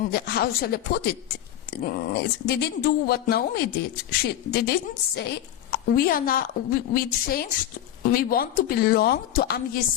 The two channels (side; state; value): right; quieter; 11.8 dB